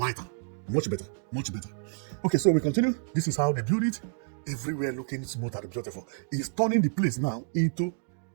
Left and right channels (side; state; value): left; silent; digital silence